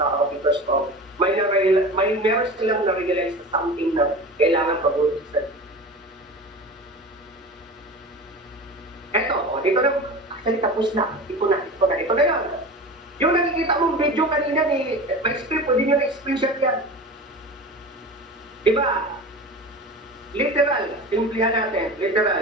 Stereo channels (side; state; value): both; normal; correlation 0.32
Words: because of meron silang na-realize na something na kailangan pag-ulisan. Eto, dito na, actually tapos na. Ito na yun. Yung nakikita mong video kanina may script, pwede nyo na-screenshot yan. Diba? Literal, simplihan natin,